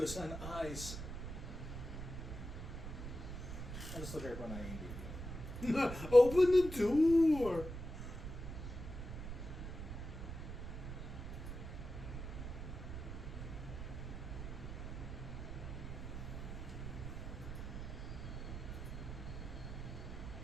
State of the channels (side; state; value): right; noise; rumble, 7 dB below the sound